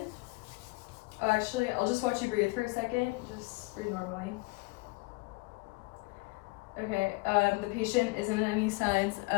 Oh, actually, I'll just watch you breathe for a second. Just breathe normally. Okay, the patient isn't in any signs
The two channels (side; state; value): right; quieter; 25.5 dB